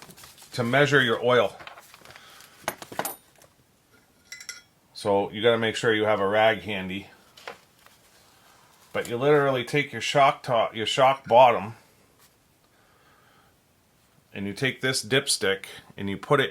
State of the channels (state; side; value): identical; both; correlation 1.00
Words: to measure your oil. So you got to make sure you have a rag handy. But you literally take your shock top, your shock bottom, and you take this dipstick and you put it